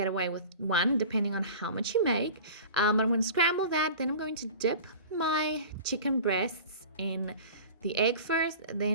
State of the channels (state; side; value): inverted; both; correlation -0.38